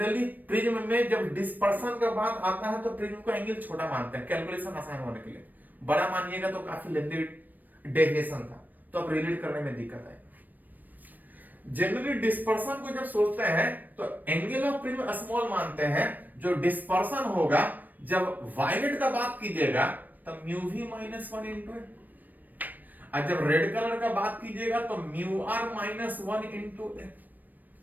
प्रिज्म में जब डिस्पर्शन का बात आता है तो प्रिज्म को एंगल छोटा मानते हैं कैलकुलेशन आसान होने के लिए, बड़ा मानिएगा तो काफी लेंथी डेविएशन था, तो अब रिलेट करने में दिक्कत है। जनरली डिस्पर्शन को जब सोचते हैं तो एंगल ऑफ प्रिज्म स्मॉल मानते हैं। जो डिस्पर्शन होगा जब वायलेट का बात कीजिएगा तब म्यू वी माइनस 1 इंटू, और जब रेड कलर का बात कीजिएगा तो म्यू आर माइनस 1 इंटू।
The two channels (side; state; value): left; late; 0.087 ms